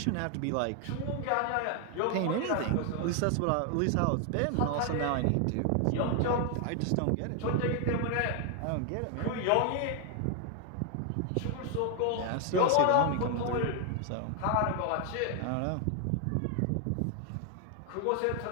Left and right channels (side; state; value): both; different; correlation 0.00